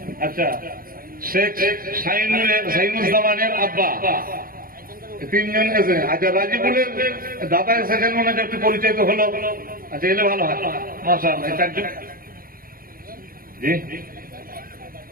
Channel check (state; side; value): late; left; 0.42 ms